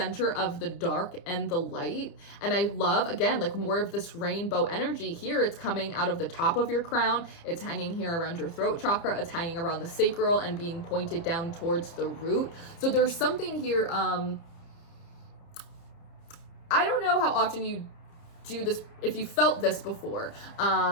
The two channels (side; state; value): right; late; 30 ms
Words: of the dark and the light. And I love, again, like more of this rainbow energy here. It's coming out of the top of your crown. It's hanging here around your throat chakra. It's hanging around the sacral and being pointed down towards the root. So there's something here. I don't know how often you do this, if you felt this before,